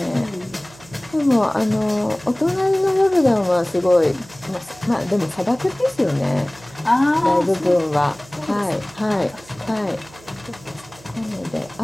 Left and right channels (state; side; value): noise; right; hum, 23 dB below the sound